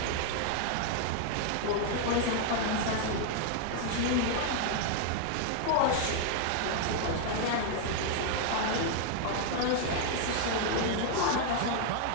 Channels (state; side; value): different; both; correlation 0.00